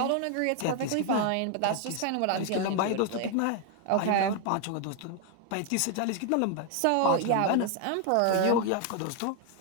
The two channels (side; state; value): both; different; correlation 0.01